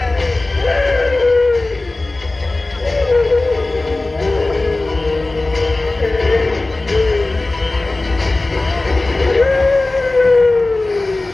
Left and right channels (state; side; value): quieter; right; 3.0 dB